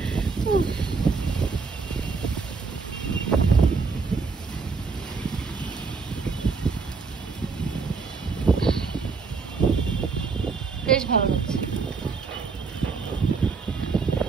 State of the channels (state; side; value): quieter; left; 4.7 dB